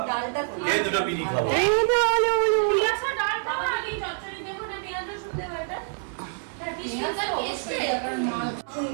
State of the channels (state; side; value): silent; left; 61 dB below the other